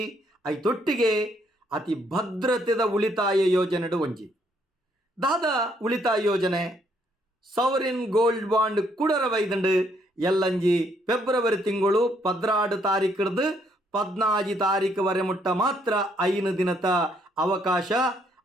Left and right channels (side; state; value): both; normal; correlation 0.70